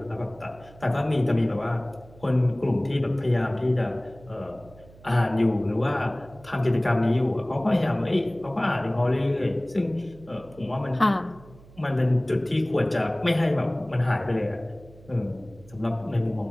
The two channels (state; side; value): noise; right; hum, 23 dB below the sound